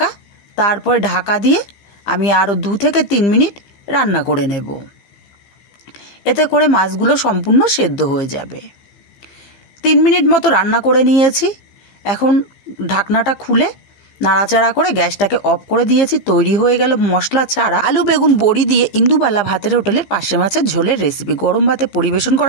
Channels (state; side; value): late; right; 15 ms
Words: তারপরে ঢাকা দিয়ে আমি আরও 2 থেকে 3 মিনিট রান্না করে নেব। এতে করে মাছগুলো সম্পূর্ণ সেদ্ধ হয়ে যাবে। 3 মিনিট মতো রান্না করে নিয়েছি। এখন ঢাকনাটা খুলে নাড়াচাড়া করে গ্যাসটাকে অফ করে দিয়েছি। তৈরি হয়ে গেল মশলা ছাড়া আলু বেগুন বড়ি দিয়ে ইন্দুবালা ভাতের হোটেলের পার্শে মাছের ঝোলের রেসিপি। গরম ভাতে পরিবেশন